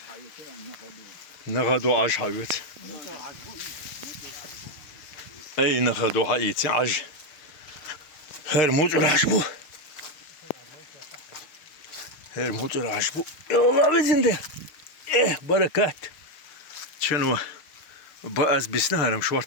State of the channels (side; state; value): right; late; 6.7 ms